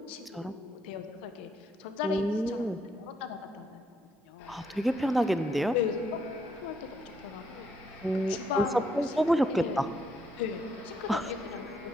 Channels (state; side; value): normal; both; correlation 0.74